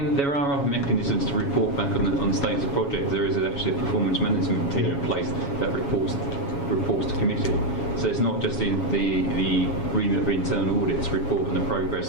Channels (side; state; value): right; late; 7.2 ms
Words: there are other mechanisms to report back on the status of projects. There is actually a performance management team in place that reports to committee. So it's not just the remit of internal audits to report on the